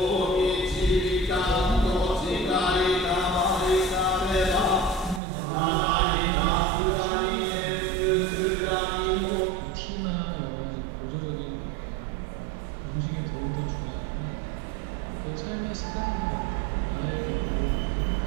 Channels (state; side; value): drops out; left; at 5.2 s